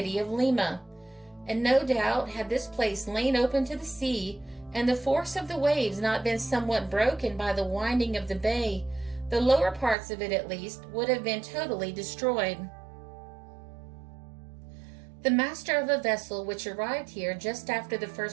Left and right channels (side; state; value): left; drops out; at 10.0 s